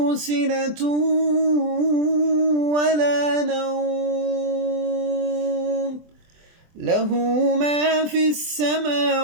سنة ولا نوم له ما في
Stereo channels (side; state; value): left; late; 24 ms